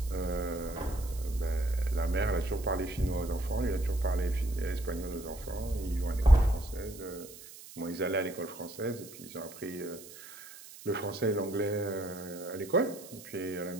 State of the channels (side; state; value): right; noise; hiss, 16 dB below the sound